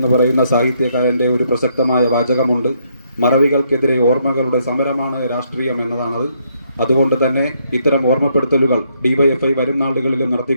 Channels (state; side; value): inverted; both; correlation -0.73